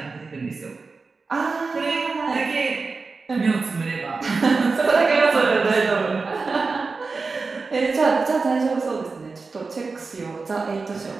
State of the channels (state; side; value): quieter; left; 4.2 dB